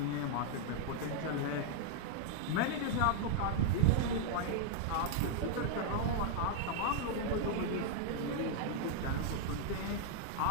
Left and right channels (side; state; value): both; different; correlation -0.01